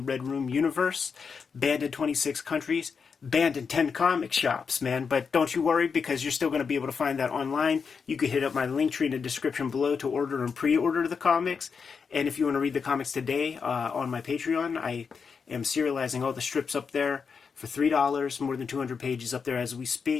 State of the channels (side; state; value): right; quieter; 5.8 dB